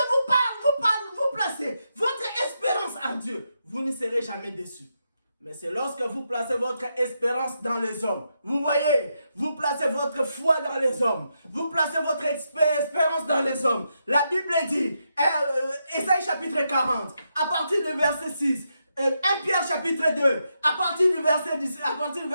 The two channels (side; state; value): both; inverted; correlation -0.83